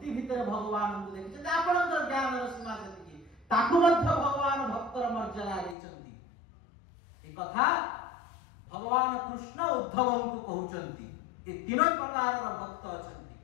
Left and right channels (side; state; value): right; drops out; at 5.8 s